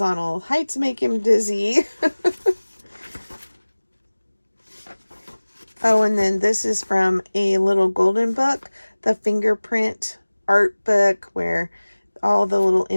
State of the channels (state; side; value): inverted; both; correlation -1.00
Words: Heights make him dizzy. Oh, and then this is from a little golden book, the fingerprint art book, where all the little